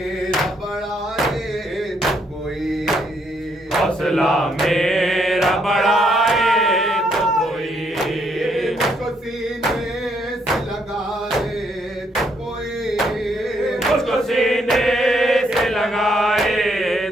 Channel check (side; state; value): both; normal; correlation 0.72